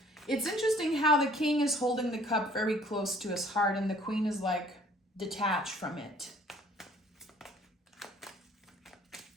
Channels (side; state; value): both; normal; correlation 0.57